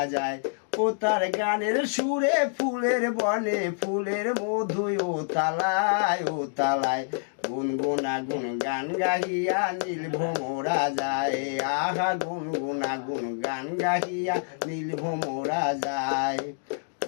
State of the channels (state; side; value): silent; right; digital silence